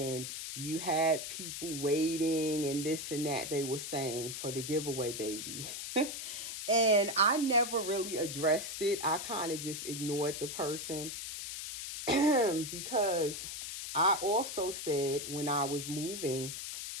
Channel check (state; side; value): noise; left; hiss, 6 dB below the sound